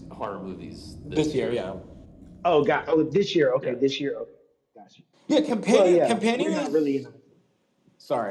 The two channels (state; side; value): identical; both; correlation 1.00